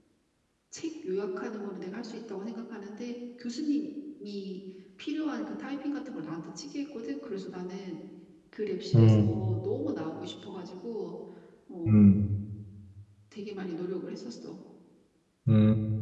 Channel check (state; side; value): identical; both; correlation 1.00